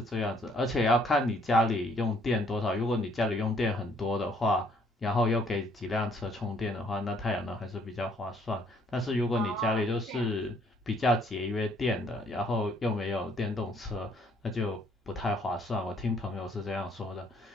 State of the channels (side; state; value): both; normal; correlation 0.64